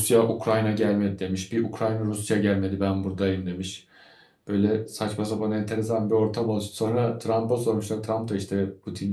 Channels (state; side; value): identical; both; correlation 1.00